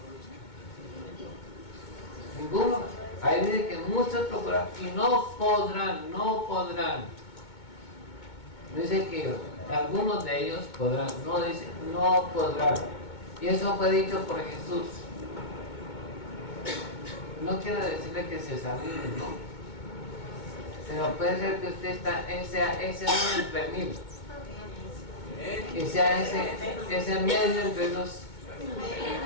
Ninguno. Ahí dice que muchos procuran y no podrán. Dice que algunos de ellos podrán, no dice, no podrán. Y eso fue dicho por Jesús. No quiero decirle que se examine, no. Pero puede ser que usted sea ese uno entre mil. Que sea ese medio entre los.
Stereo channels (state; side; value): late; right; 2.2 ms